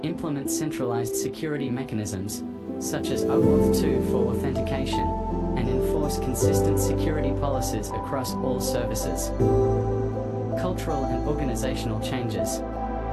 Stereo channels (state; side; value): identical; both; correlation 1.00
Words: implement centralized security mechanisms, such as OAuth 2 for authentication, and enforce consistent security policies across all services. Cultural and organizational changes.